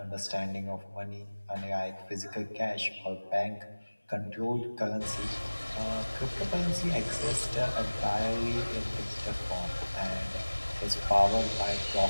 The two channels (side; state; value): both; inverted; correlation -1.00